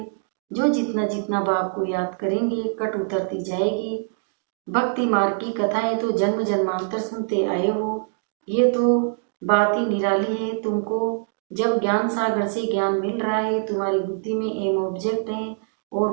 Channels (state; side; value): silent; left; digital silence